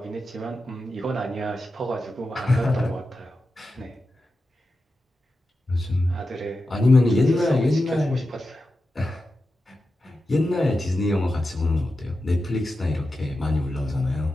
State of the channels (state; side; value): normal; both; correlation 0.91